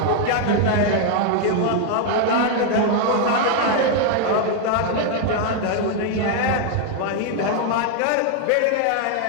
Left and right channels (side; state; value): both; different; correlation 0.00